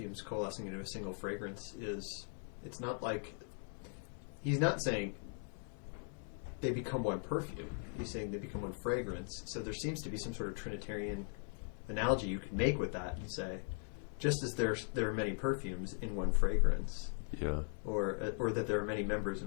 coalescing into a single fragrance it's not like, he's not saying they become one perfume. He's saying they become one fragrance. So there seems to be some sort of Trinitarian analogy you could make with that and say, just as there are many perfumes in one fragrance, or that there are many members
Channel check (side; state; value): right; silent; 51 dB below the other